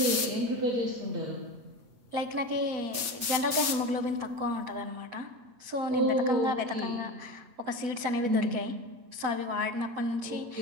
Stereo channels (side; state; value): left; late; 8.2 ms